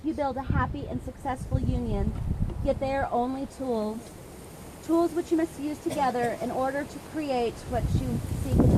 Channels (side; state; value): both; identical; correlation 1.00